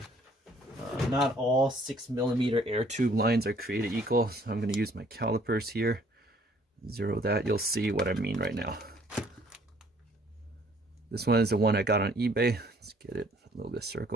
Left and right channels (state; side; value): normal; both; correlation 0.60